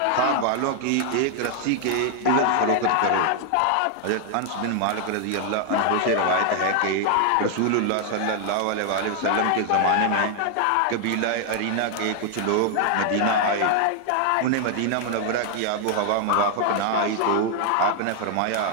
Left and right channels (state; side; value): different; both; correlation 0.00